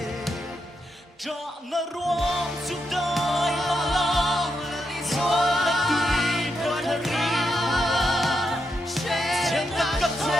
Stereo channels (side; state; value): both; normal; correlation 0.83